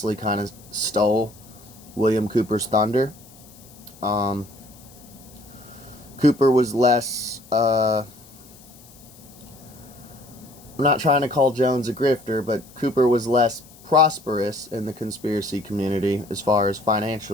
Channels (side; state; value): left; noise; hiss, 23 dB below the sound